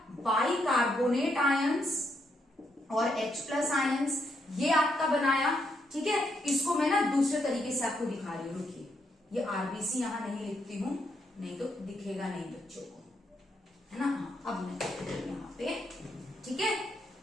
बाइकार्बोनेट आयंस और H+ आयंस, ये आपका बनाया, ठीक है। इसको मैं ना दूसरे तरीके से आपको दिखा रही हूँ, रुकिए, ये आरबीसी यहां नहीं लिखती हूं, नहीं तो दिखेगा नहीं बच्चों को, है ना। अब मैं यहाँ पे, ठीक है,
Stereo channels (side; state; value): both; normal; correlation 0.77